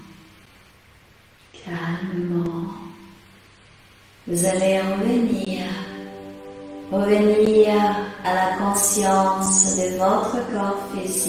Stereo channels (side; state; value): both; identical; correlation 1.00